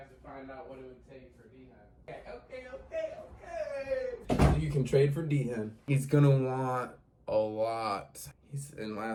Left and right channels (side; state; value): both; identical; correlation 1.00